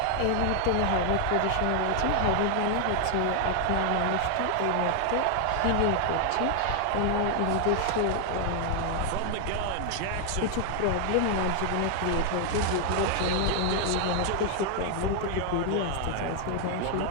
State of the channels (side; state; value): both; different; correlation 0.00